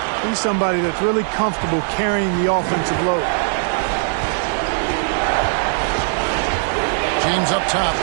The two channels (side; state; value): left; silent; digital silence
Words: He's somebody that's really comfortable carrying the offensive load. James up top.